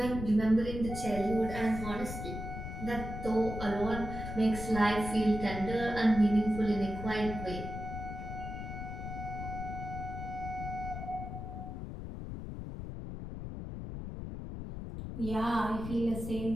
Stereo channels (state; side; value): noise; left; rumble, 7 dB below the sound